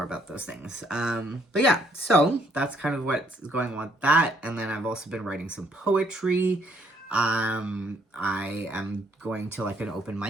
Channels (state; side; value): normal; both; correlation 0.67